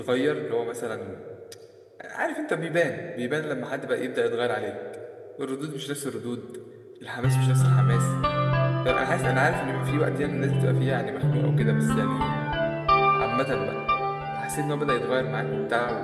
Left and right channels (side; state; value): both; identical; correlation 1.00